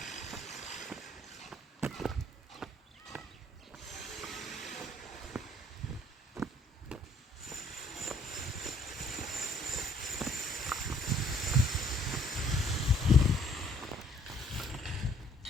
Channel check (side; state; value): both; normal; correlation 0.62